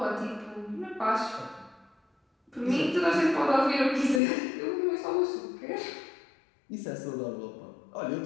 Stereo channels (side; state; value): right; drops out; at 4.2 s